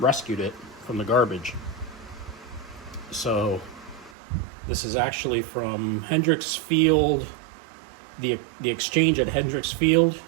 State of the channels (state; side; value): drops out; left; at 4.2 s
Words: it from the garbage. So this is actually from Hendricks Field, the exchange at Hendricks Field.